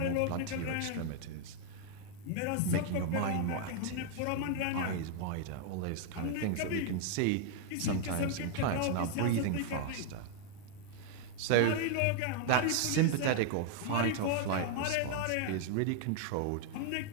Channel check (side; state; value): both; different; correlation 0.00